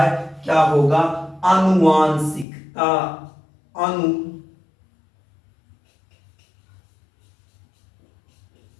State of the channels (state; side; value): drops out; right; at 2.5 s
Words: क्या होगा, आनुवांशिकता।